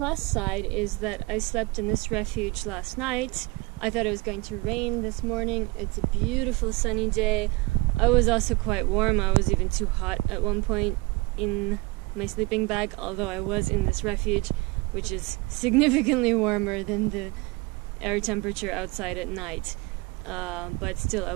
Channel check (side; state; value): left; quieter; 23.6 dB